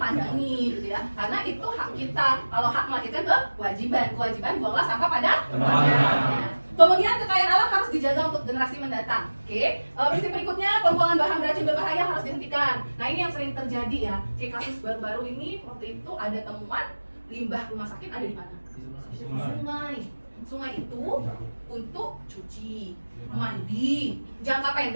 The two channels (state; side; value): inverted; both; correlation -1.00